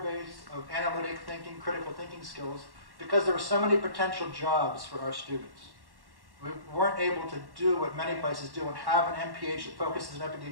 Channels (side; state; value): left; late; 1.1 ms